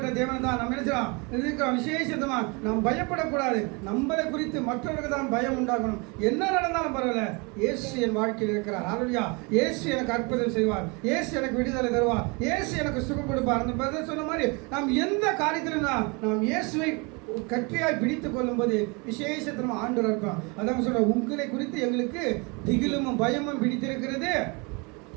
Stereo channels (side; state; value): left; quieter; 29.9 dB